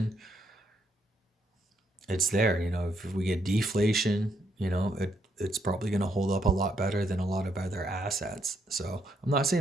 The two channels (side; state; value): both; normal; correlation 0.76